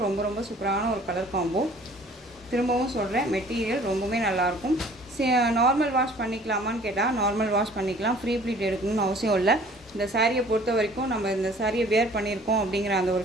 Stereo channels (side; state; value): both; normal; correlation 0.52